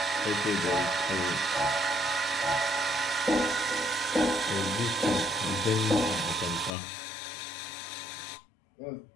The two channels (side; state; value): right; drops out; at 6.8 s